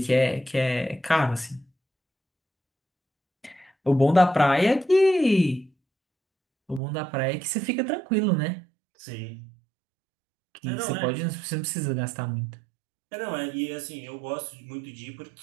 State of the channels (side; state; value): left; drops out; at 6.8 s